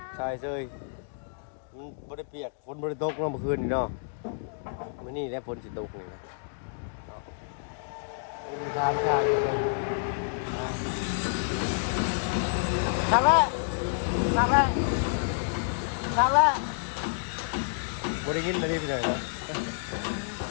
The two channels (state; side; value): silent; right; digital silence